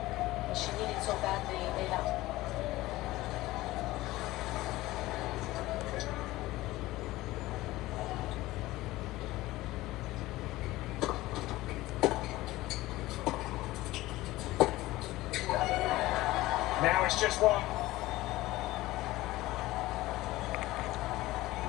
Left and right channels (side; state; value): right; quieter; 17.9 dB